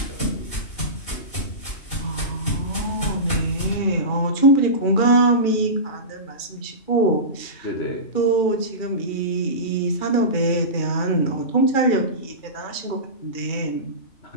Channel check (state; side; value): late; right; 2.4 ms